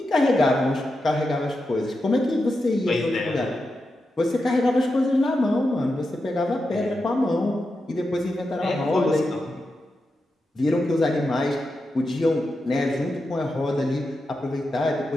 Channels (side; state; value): both; normal; correlation 0.88